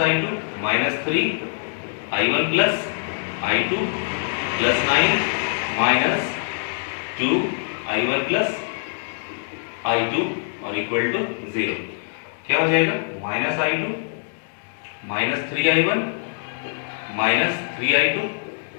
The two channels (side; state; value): right; silent; digital silence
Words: minus 3 i1 plus i2 plus 9 minus 2 i1 plus i2 और इक्वल टू 0। क्या हो जाएगा? Minus i2 minus 3i1 minus 3i2